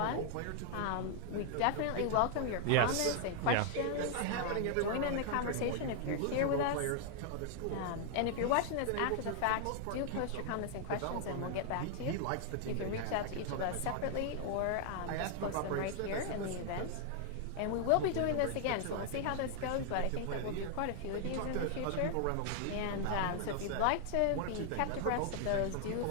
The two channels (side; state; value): both; different; correlation 0.00